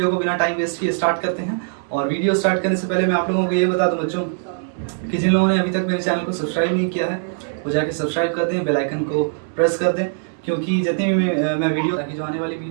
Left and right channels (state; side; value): silent; left; digital silence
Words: को बिना टाइम वेस्ट किए स्टार्ट करते हैं। और वीडियो स्टार्ट करने से पहले मैं आप लोगों को ये बता दूं बच्चों कि जिन लोगों ने अभी तक मेरे चैनल को सब्सक्राइब नहीं किया है वो जाके सब्सक्राइब कर दें, बेल आइकन को प्रेस कर दें, क्योंकि जितनी भी मैं वीडियो ताकि जो आने वाली